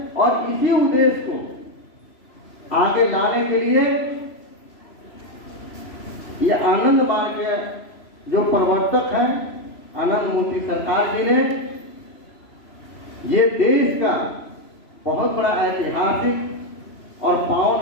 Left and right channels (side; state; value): right; late; 3.0 ms